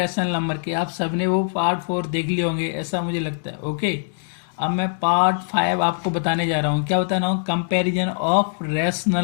नंबर के। आप सबने वो पार्ट 4 देख लिए होंगे ऐसा मुझे लगता है। ओके, अब मैं पार्ट 5 आपको बताने जा रहा हूँ। क्या बताना हूँ? कंपैरिजन ऑफ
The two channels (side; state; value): right; silent; 64 dB below the other